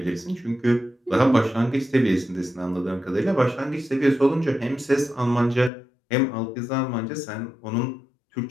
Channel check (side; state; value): right; drops out; at 5.7 s